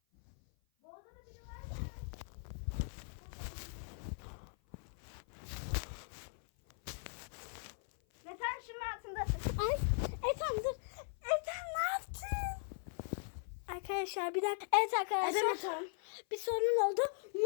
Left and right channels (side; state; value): right; silent; 52 dB below the other